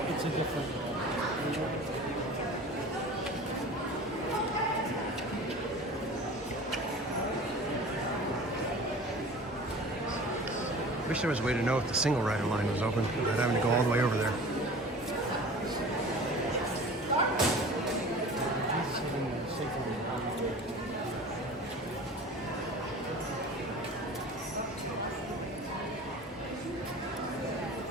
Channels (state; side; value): normal; both; correlation 0.40